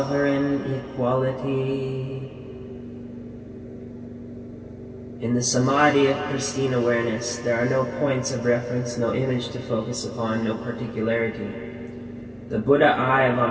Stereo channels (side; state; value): both; identical; correlation 1.00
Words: equality. In the samadhi of pristine awareness, there are no points of reference, no image to focus upon, no particularity. The Buddha eye of